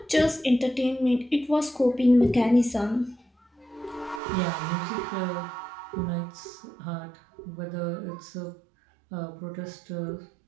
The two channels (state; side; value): drops out; left; at 4.2 s